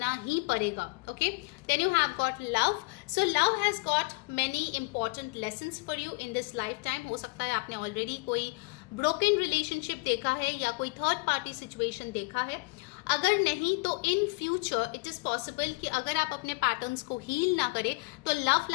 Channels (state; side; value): quieter; right; 27.0 dB